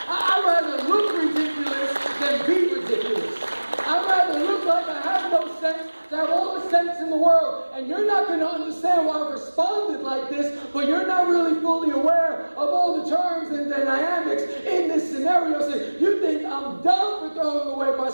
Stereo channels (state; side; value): inverted; both; correlation -1.00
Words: rather look ridiculous than be ridiculous. I'd rather look like I have no sense than have all the sense in the world. And you're not going to understand why I responded like this, but you're not really fully aware of all the terms and the dynamics in this scenario. So you think I'm dumb for throwing away my